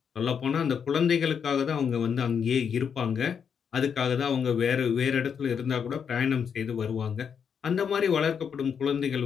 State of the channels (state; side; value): quieter; right; 7.1 dB